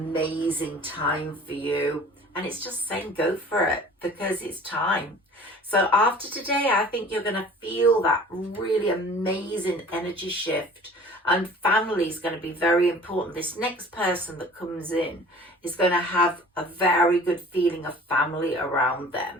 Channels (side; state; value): both; normal; correlation 0.46